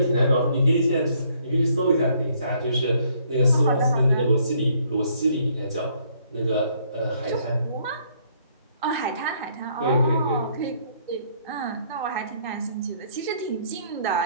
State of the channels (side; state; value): both; inverted; correlation -0.66